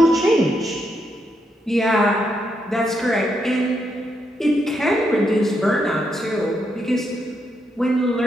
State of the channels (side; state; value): both; normal; correlation 0.80